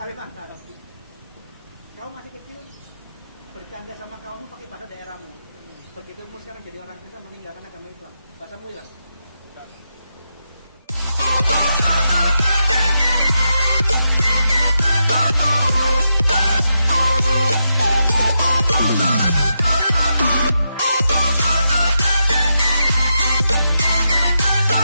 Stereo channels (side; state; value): both; inverted; correlation -0.85